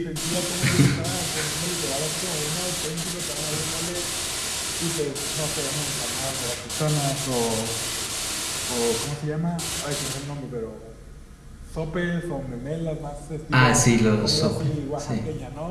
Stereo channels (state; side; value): identical; both; correlation 1.00